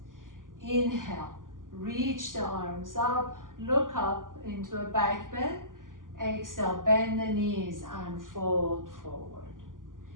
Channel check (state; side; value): late; left; 0.89 ms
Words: Inhale, reach the arms up, look up into a back bend. Exhale, bend the knees and fold forward.